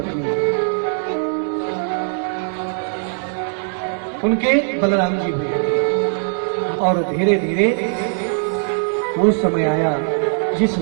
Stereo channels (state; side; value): silent; left; 66 dB below the other